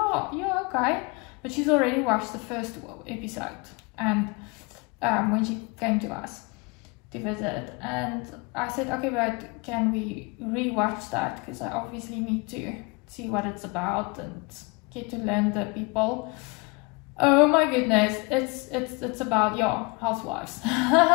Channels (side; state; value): right; quieter; 28.4 dB